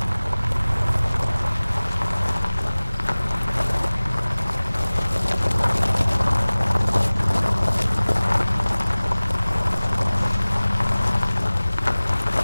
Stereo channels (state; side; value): inverted; both; correlation -0.99